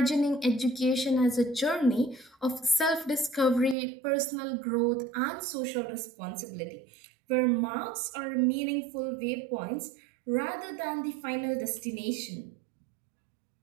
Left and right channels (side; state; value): left; drops out; at 3.8 s